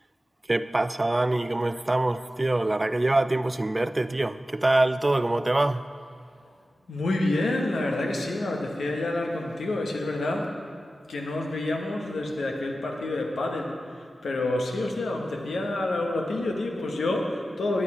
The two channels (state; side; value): normal; both; correlation 0.94